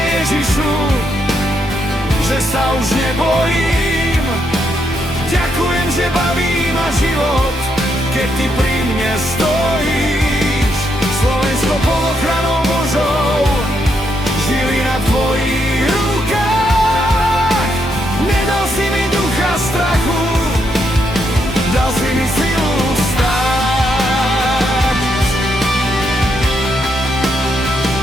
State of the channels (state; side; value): normal; both; correlation 0.78